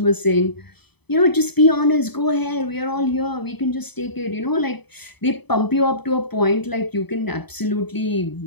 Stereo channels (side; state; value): right; late; 0.98 ms